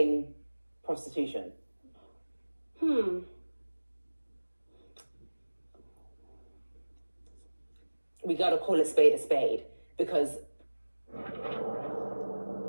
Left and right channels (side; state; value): both; inverted; correlation -1.00